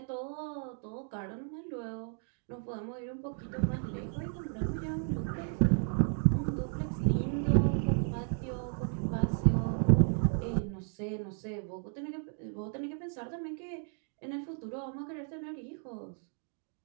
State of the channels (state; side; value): silent; left; 55 dB below the other